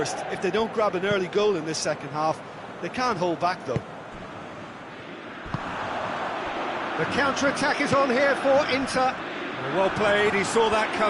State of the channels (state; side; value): identical; both; correlation 1.00